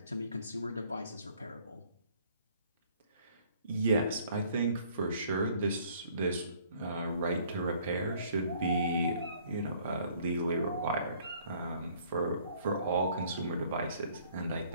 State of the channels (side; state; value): both; inverted; correlation -0.59